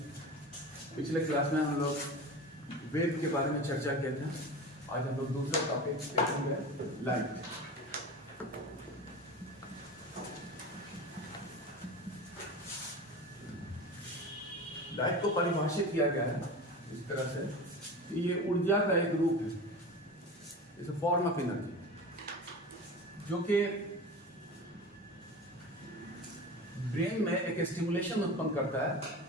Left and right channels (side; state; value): both; normal; correlation 0.31